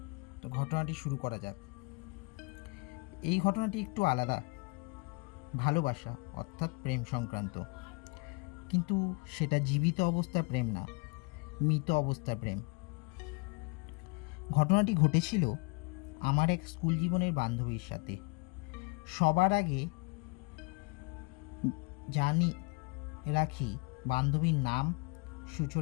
তো ঘটনাটি শুরু করা যাক। এই ঘটনাটি একটু আলাদা, ভালোবাসা অর্থাৎ প্রেম সংক্রান্ত, কিন্তু সেটা জীবিত অবস্থার প্রেম না, মৃত অবস্থার প্রেম। ঘটনাটি ঘটেছিল আমার এক স্কুল জীবনের বান্ধবীর সাথে। সবার আগে জানি রাখি, বান্ধবীর নাম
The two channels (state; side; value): quieter; right; 29.7 dB